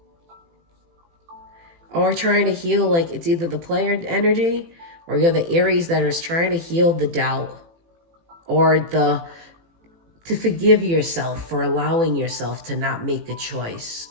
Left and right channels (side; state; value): left; late; 18 ms